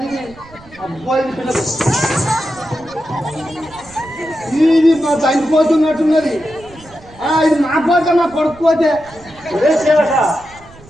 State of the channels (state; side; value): noise; right; rumble, 23 dB below the sound